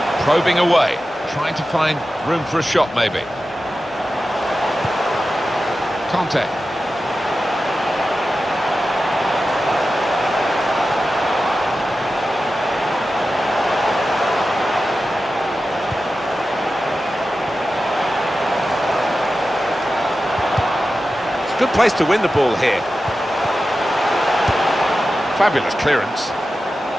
Probing away. Trying to find room for a shot maybe. Conte. It's a good place to win the ball here. Fabulous clearance.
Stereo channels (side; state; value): both; normal; correlation 0.93